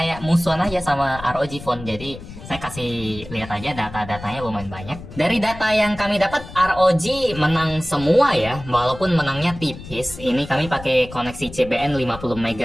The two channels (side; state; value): left; noise; rumble, 14 dB below the sound